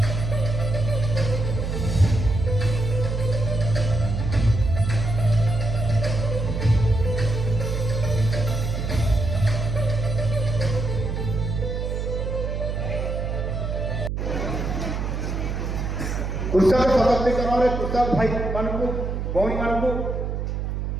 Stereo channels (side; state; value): right; noise; hum, 2 dB below the sound